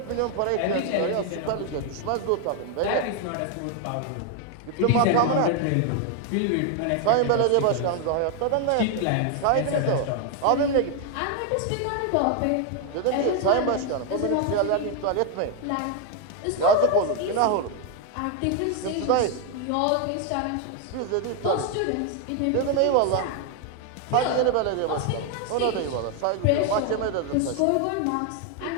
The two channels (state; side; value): different; both; correlation 0.01